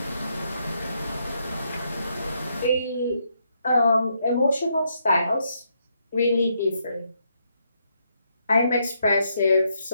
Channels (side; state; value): both; inverted; correlation -0.77